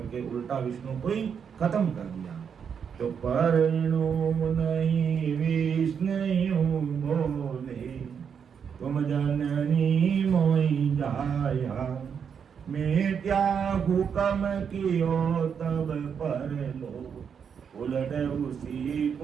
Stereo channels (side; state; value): left; quieter; 7.1 dB